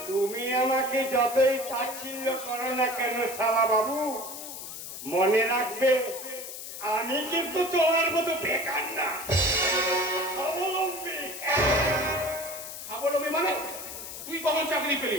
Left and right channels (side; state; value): left; noise; hiss, 10 dB below the sound